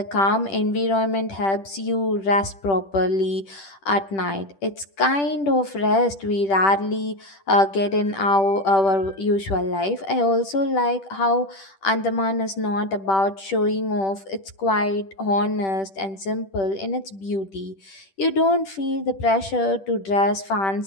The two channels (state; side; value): late; right; 10 ms